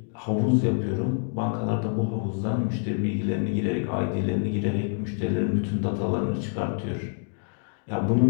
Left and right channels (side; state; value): right; silent; 55 dB below the other